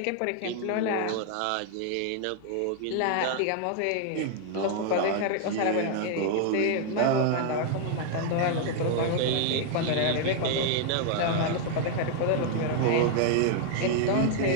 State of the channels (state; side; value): different; both; correlation 0.00